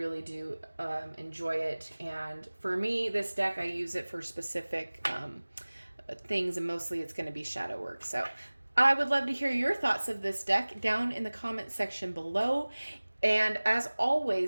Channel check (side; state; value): both; inverted; correlation -1.00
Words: do enjoy it. And for me, this deck, I use it for specific things, and mostly it's going to be shadow work. So I would love to hear your thoughts of this deck down in the comment section below. And as